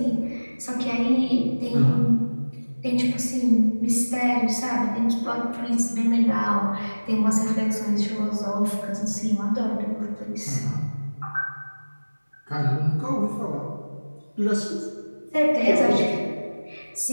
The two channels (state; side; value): inverted; both; correlation -1.00